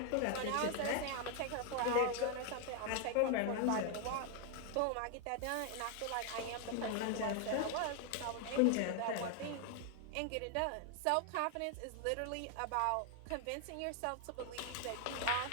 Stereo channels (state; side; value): different; both; correlation 0.01